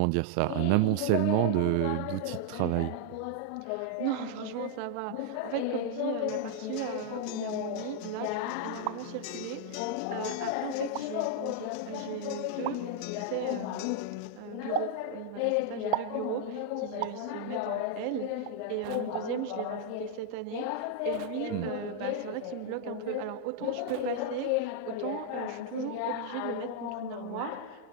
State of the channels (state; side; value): different; both; correlation 0.00